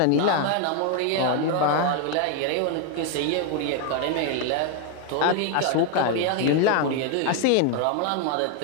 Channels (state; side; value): different; both; correlation 0.01